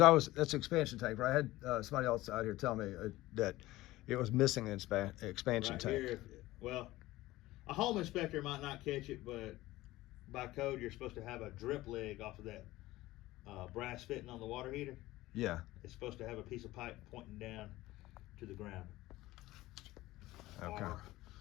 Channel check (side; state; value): right; quieter; 17.6 dB